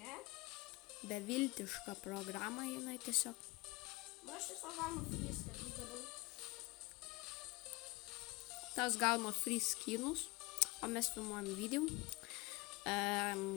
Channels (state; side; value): quieter; right; 23.6 dB